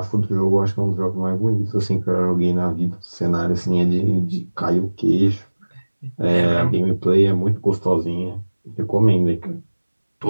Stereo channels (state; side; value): inverted; both; correlation -1.00